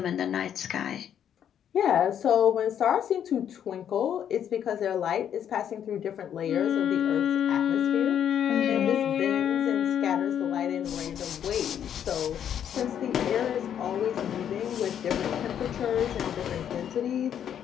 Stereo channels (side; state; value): right; quieter; 9.3 dB